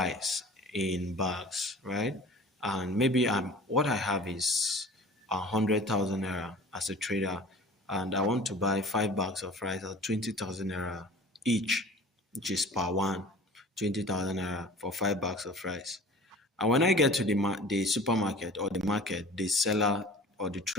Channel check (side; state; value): both; normal; correlation 0.43